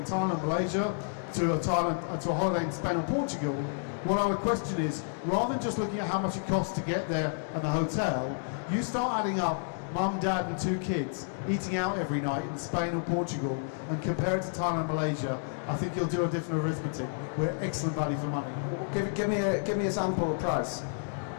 Thailand, Malaysia, to a holiday in Spain or Portugal, what I would question is, rather than just looking at how much it costs to get there and the hotel, you start adding up mum, dad and two kids eating out every night in Spain or Portugal and compare it to Thailand and Malaysia. I think you'll do a different arithmetic. We're excellent value for money. Give me a sample price.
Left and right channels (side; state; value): right; silent; digital silence